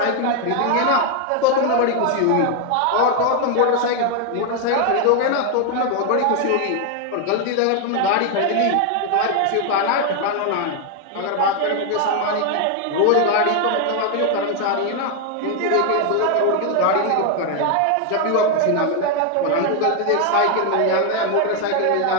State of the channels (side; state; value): both; different; correlation 0.01